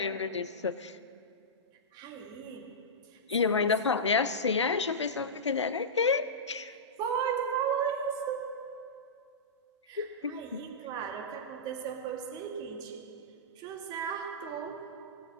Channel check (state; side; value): normal; both; correlation -0.16